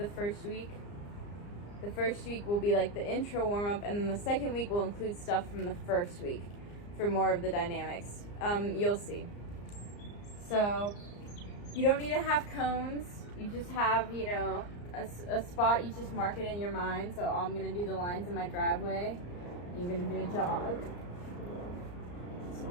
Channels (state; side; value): late; right; 34 ms